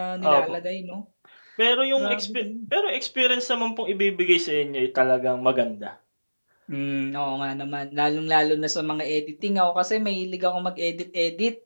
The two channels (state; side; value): inverted; both; correlation -1.00